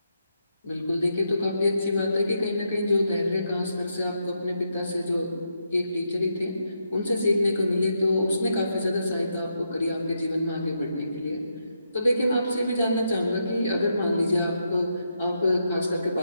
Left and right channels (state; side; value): inverted; both; correlation -0.82